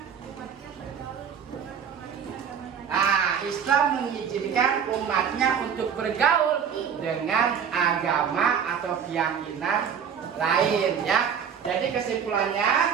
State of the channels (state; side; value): quieter; left; 7.6 dB